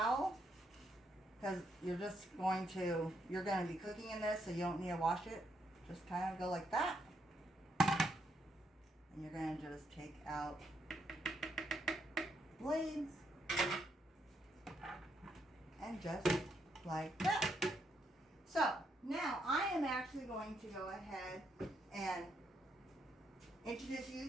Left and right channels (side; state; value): both; normal; correlation 0.77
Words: because you're going to be cooking in this, so you don't need to wash it. Just kind of go like that. And you're going to just take out blades. And just like that. So, now I am actually going to go ahead and introduce you